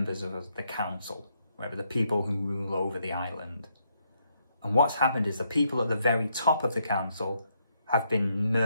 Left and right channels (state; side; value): inverted; both; correlation -0.76